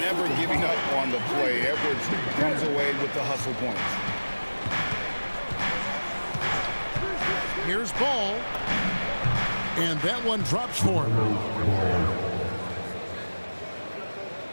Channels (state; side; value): inverted; both; correlation -1.00